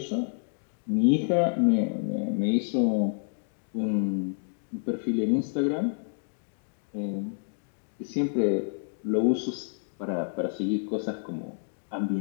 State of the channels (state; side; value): silent; right; digital silence